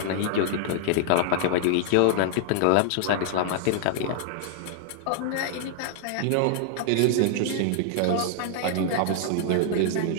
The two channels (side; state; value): both; different; correlation -0.01